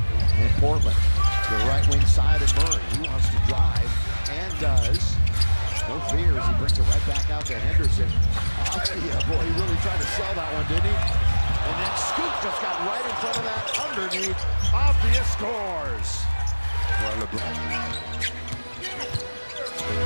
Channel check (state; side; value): inverted; both; correlation -1.00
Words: Portland, to the right wing side of Murray. He wants to drive and does. No fears, he brings it right back out to Henderson. Yeah, boy, he really tried to sell that one, didn't he? And then Scoop just got right in front of that underneath. Avdia scores.